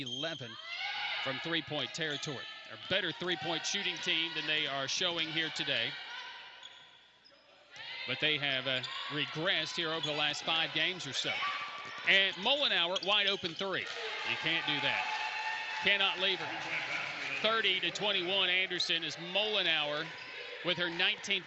from three-point territory. A better three-point shooting team than they are showing here today. But they have regressed here over the last 5 games or so. And Mollenauer, wide open three. You can't do that. Cannot leave her. 30-21 Anderson is Mollenauer with her 19th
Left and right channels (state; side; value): identical; both; correlation 1.00